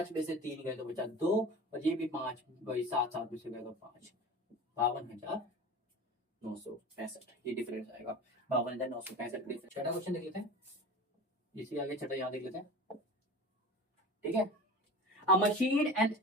में से 3 गए तो बचा 2, और ये भी 5, वही 7, 7 में से गए तो 5, 52,965, ये डिफरेंस आएगा 52,965। छठा क्वेश्चन देख लेते हैं, इसी आगे छठा यहाँ देख लेते हैं, ठीक है। अ मशीन एंड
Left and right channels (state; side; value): normal; both; correlation 0.35